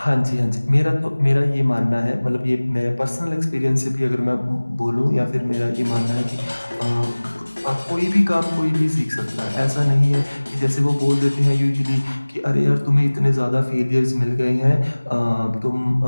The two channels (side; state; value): both; inverted; correlation -1.00